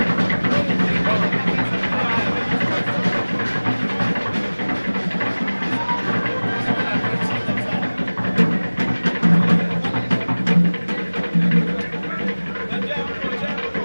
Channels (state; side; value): inverted; both; correlation -1.00